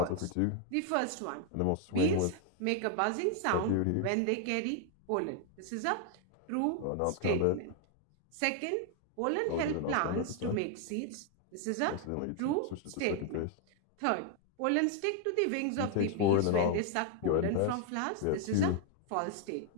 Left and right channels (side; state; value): both; different; correlation 0.00